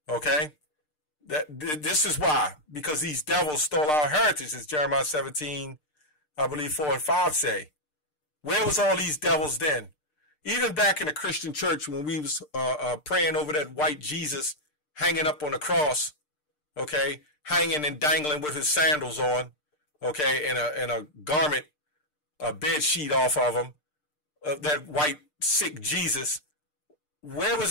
okay? This is why, because these devils stole our heritage, as Jeremiah 17, I believe 4 and 5 say. Where was all these devils then? Even back in the Christian church when we was praying over that white Jesus hanging up on the cross, okay, hanging and dangling with his sandals on, okay, and a garment, a bed sheet off of him, that white sick Jesus. Where was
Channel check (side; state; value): right; late; 6.6 ms